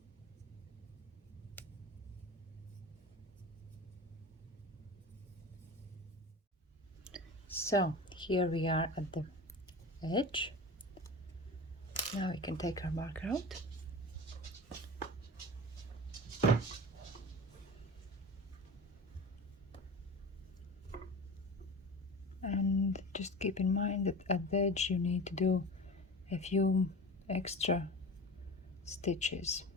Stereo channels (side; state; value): both; normal; correlation 0.33